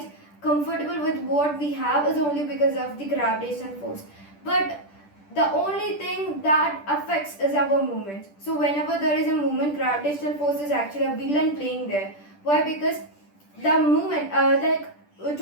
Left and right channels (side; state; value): right; late; 10 ms